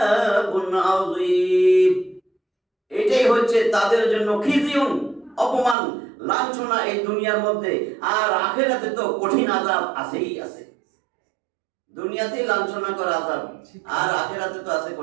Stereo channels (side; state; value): left; drops out; at 5.8 s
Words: আযীম। এটাই হচ্ছে তাদের জন্য খিযুন, অপমান, লাঞ্ছনা এই দুনিয়ার মধ্যে, আর আখিরাতে তো কঠিন আযাব আছেই আছে। দুনিয়াতেই লাঞ্ছনা করা আযাব, আর আখিরাতে তো আছে